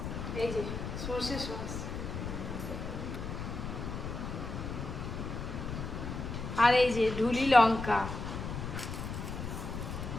এই যে সর্ষে সস, আর এই যে ঢুলি লঙ্কা,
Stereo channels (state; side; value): noise; left; rumble, 5 dB below the sound